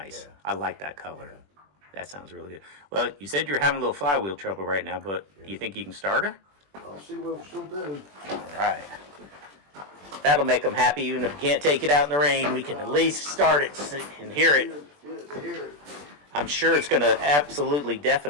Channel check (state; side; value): late; left; 21 ms